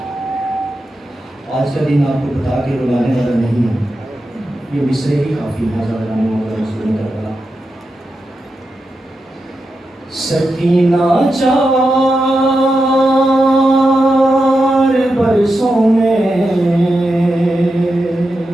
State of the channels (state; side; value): normal; both; correlation 0.89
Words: आज का दिन आपको बता के रुलाने वाला नहीं है, ये मिसरे ही काफ़ी है ज़्यादा करना। सकीना 4 बरसों में